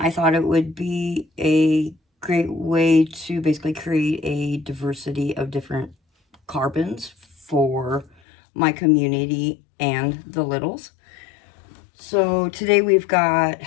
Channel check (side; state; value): right; drops out; at 8.1 s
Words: thought it would be a great way to basically create a diversity of different carbons for my community and the littles. So today we've got